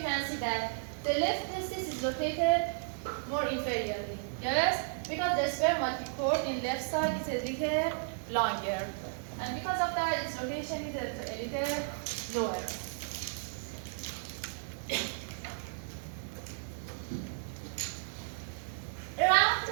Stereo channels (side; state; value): left; silent; digital silence